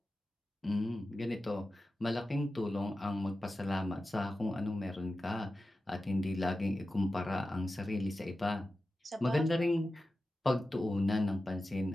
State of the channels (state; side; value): normal; both; correlation 0.93